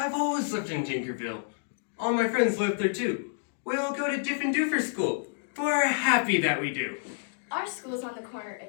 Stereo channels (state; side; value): silent; right; digital silence